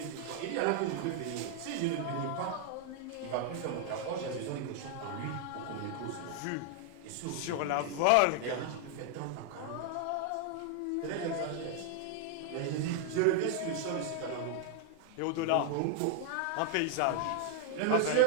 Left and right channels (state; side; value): different; both; correlation 0.00